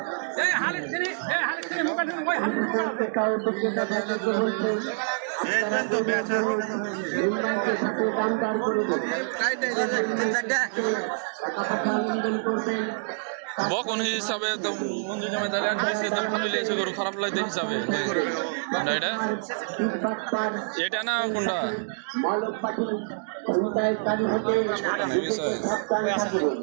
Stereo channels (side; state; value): left; silent; digital silence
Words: বকন হিসাবে তো বন্ধু জমে তাহলে এক পিসে তো ভালো লেগেছে, গরু খারাপ লাগতে হিসাবে। এটা এটা না কোনটা? ছোট না বিষয়।